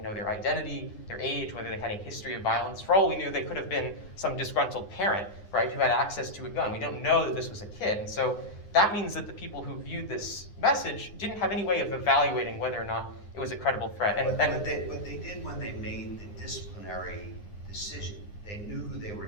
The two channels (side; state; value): right; late; 9.7 ms